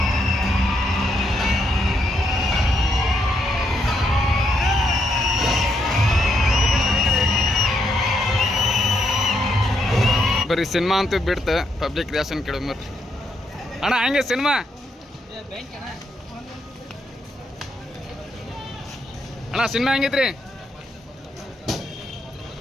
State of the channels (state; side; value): normal; both; correlation 0.78